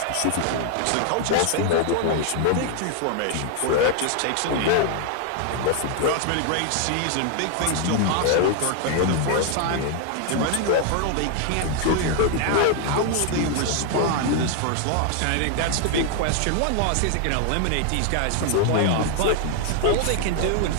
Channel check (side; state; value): both; different; correlation 0.00